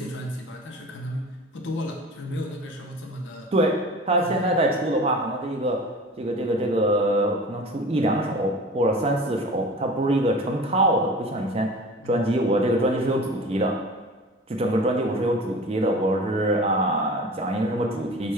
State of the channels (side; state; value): both; normal; correlation 0.39